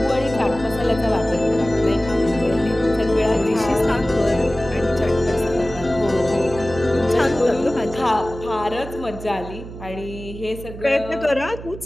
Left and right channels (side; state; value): right; noise; hum, 13 dB below the sound